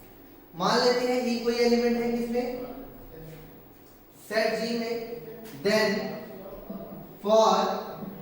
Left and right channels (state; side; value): identical; both; correlation 1.00